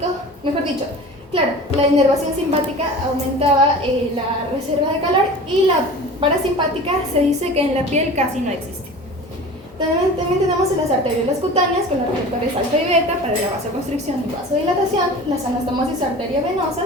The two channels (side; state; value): both; normal; correlation 0.38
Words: mejor dicho, claro, la inervación simpática aumentaba la reserva de calor, y la parasimpática se dice que en la piel casi no existe. También tenemos las arteriolas cutáneas con los receptores alfa y beta para la vasoconstricción y vasodilatación, las anastomosis